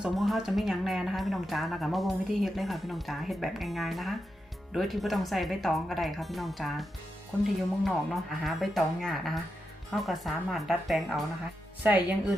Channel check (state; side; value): normal; both; correlation 0.87